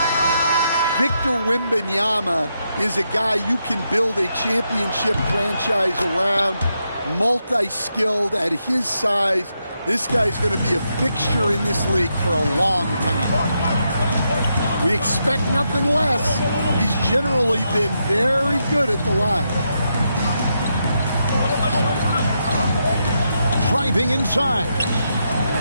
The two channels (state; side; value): inverted; both; correlation -0.82